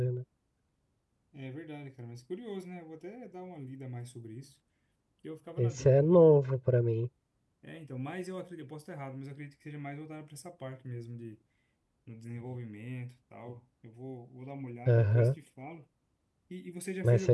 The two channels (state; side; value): identical; both; correlation 1.00